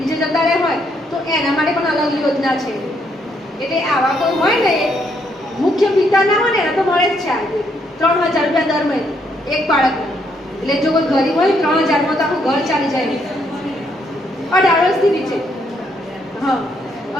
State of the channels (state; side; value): normal; both; correlation 0.73